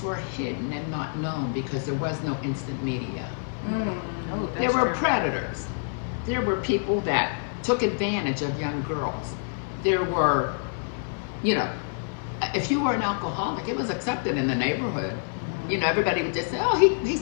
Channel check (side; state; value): right; silent; digital silence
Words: were hidden and not known because there was no instant media. There were predators. There were people that took advantage of young girls. There were, if you were an alcoholic, it was accepted in the neighborhood. Everybody would just say, oh,